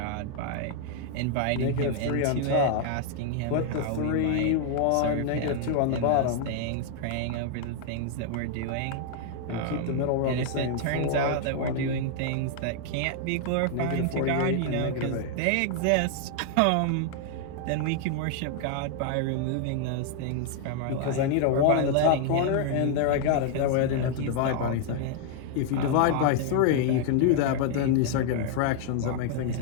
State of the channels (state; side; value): different; both; correlation 0.00